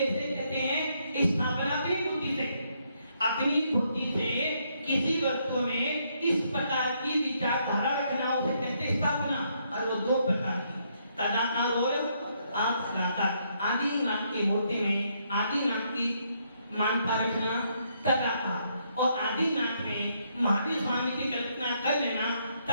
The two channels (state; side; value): inverted; both; correlation -0.74